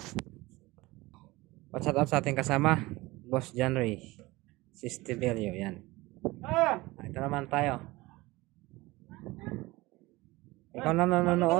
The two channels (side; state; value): left; quieter; 20.8 dB